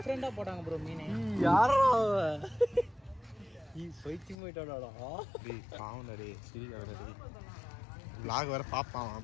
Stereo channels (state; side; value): drops out; right; at 4.4 s